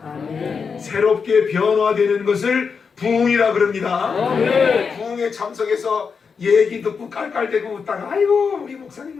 아멘. 새롭게 변화되는 것을 부흥이라 그럽니다. 아멘. 부흥에 참석해서 얘기 듣고 깔깔대고 웃다가 아이고 우리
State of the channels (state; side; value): quieter; right; 5.7 dB